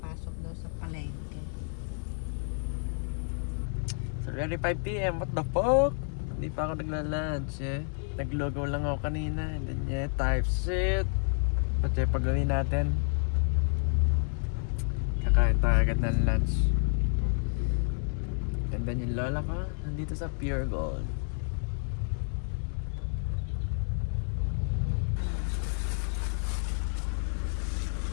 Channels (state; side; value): silent; right; 55 dB below the other